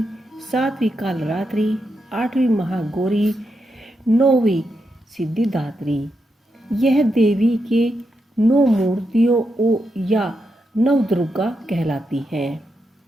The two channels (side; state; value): both; normal; correlation 0.84